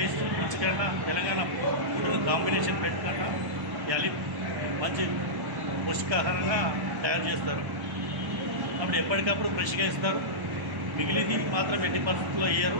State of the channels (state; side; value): late; left; 1.1 ms